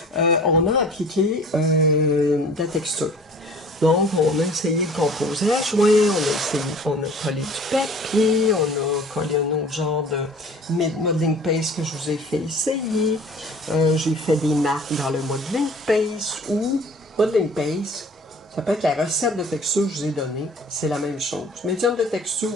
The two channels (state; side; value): normal; both; correlation 0.47